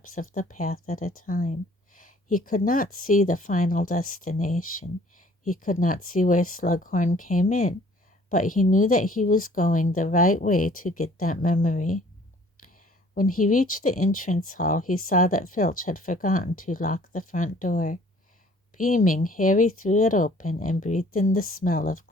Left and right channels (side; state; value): both; normal; correlation 0.55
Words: of the path at a time. He could not see the final destination. He could not see where Slughorn came in, but he knew that he was going the right way to get that memory. When he reached the entrance hall, he saw that Filch had forgotten to lock the front door. Beaming, Harry threw it open and breathed in the smell of